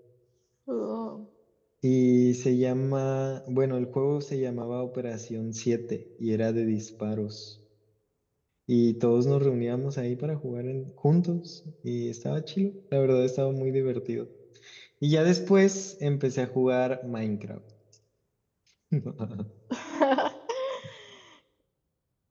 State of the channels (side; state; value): both; identical; correlation 1.00